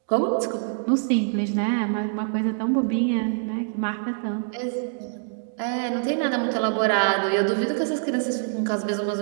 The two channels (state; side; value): silent; left; digital silence